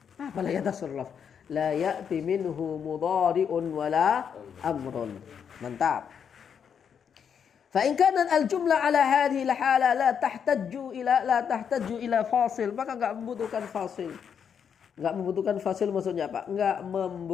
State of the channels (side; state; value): right; quieter; 7.5 dB